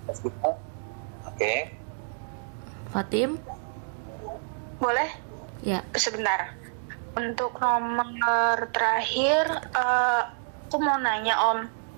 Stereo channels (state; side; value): silent; left; digital silence